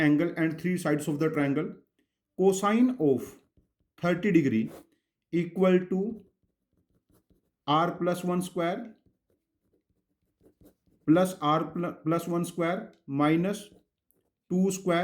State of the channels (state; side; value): identical; both; correlation 1.00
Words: and three sides of the triangle. Cosine of 30 degree equal to r plus 1 square plus r plus 1 square minus 2